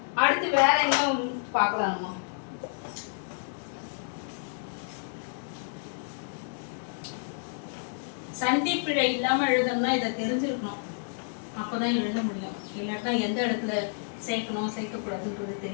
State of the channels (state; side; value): silent; right; digital silence